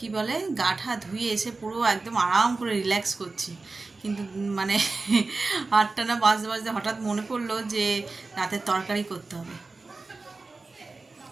বলে গাঠা ধুয়ে এসে পুরো একদম আরাম করে রিল্যাক্স করছি, কিন্তু 8টা না বাজতে বাজতে হঠাৎ মনে পড়লো যে রাতের তরকারি করতে হবে।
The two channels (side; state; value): left; quieter; 3.7 dB